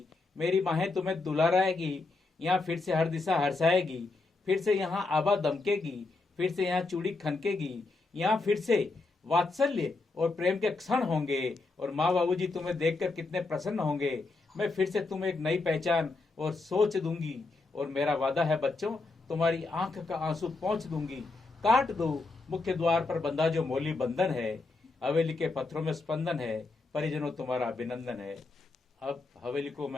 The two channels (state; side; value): quieter; right; 3.6 dB